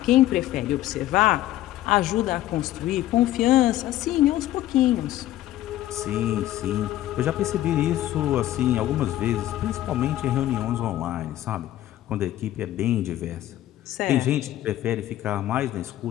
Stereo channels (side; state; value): right; quieter; 14.1 dB